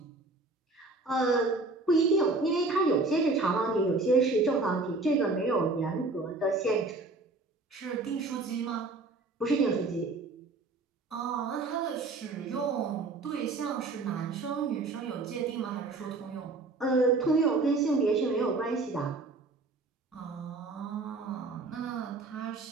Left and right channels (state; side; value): quieter; left; 3.5 dB